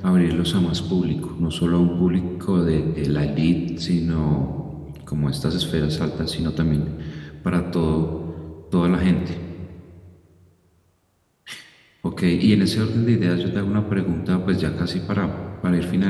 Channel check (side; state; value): both; identical; correlation 1.00